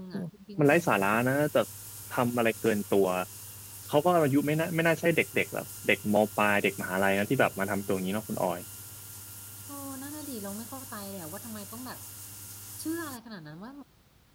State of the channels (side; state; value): both; identical; correlation 1.00